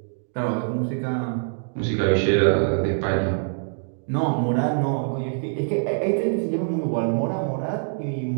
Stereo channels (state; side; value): silent; left; digital silence